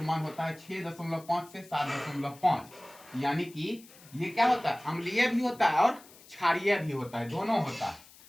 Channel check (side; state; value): left; noise; hiss, 23 dB below the sound